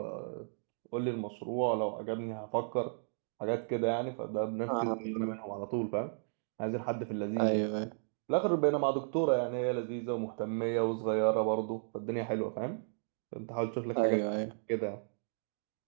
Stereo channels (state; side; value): silent; left; digital silence